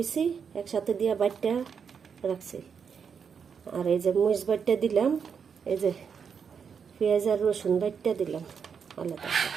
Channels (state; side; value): quieter; left; 6.6 dB